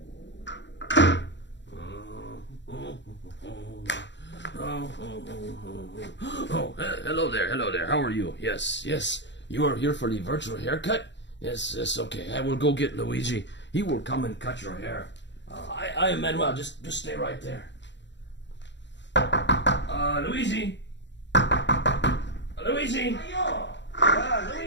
hello there. How are you? Yes. You are here for the virtual haircut? Yes, okay. I will go get Luigi. He will come and cut your hair. I am Manuel. Just stay right there. Luigi? Luigi?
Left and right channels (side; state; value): right; late; 0.52 ms